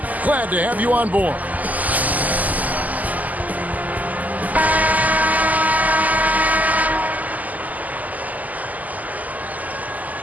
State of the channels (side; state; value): left; late; 0.079 ms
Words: Glad to have you on board.